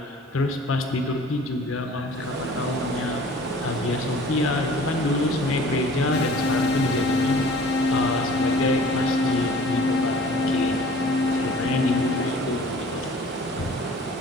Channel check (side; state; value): both; normal; correlation 0.48